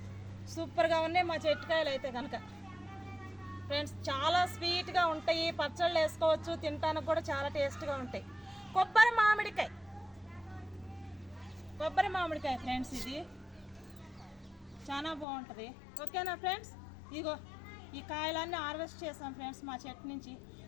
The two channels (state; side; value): drops out; right; at 15.2 s